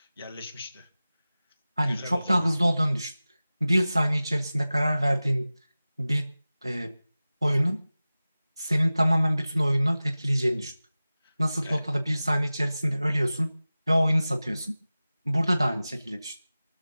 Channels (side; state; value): both; inverted; correlation -0.97